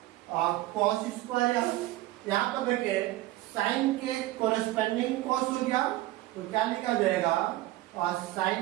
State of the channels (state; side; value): quieter; left; 16.8 dB